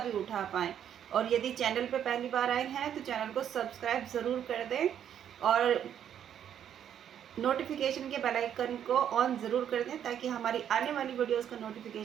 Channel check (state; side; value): quieter; left; 9.5 dB